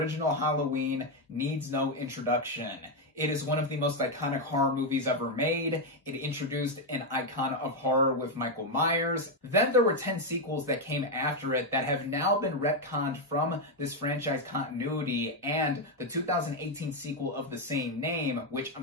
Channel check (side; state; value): both; normal; correlation 0.04